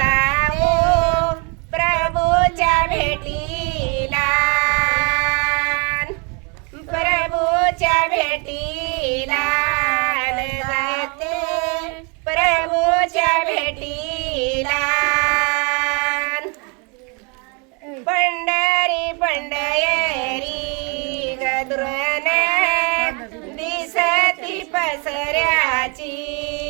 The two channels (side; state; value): left; quieter; 33.1 dB